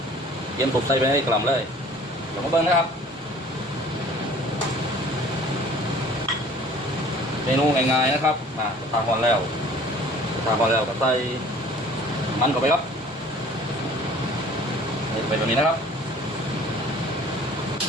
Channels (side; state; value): both; normal; correlation 0.50